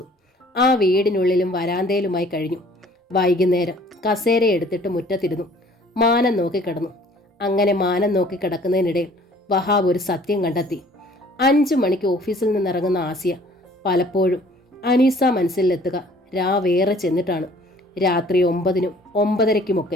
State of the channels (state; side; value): normal; both; correlation 0.55